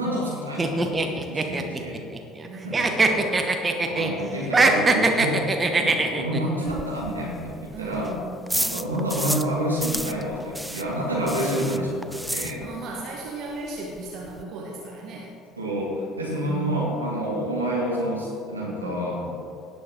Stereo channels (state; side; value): normal; both; correlation 0.55